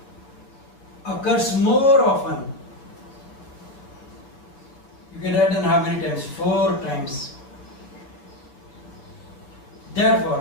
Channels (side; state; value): right; late; 7.5 ms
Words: occurs more often. You can write down how many times? 4 times.